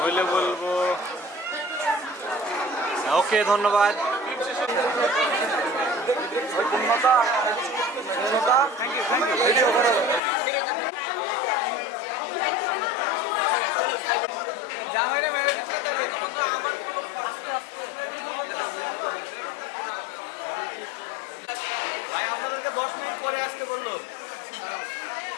বলবো ওকে, ধন্যবাদ।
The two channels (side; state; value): right; drops out; at 10.2 s